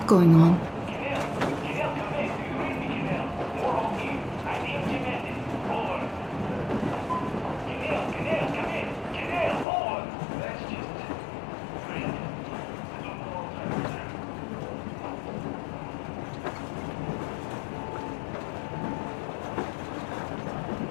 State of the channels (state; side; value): drops out; right; at 9.7 s